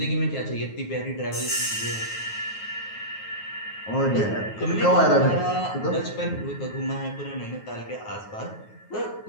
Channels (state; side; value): late; right; 9.4 ms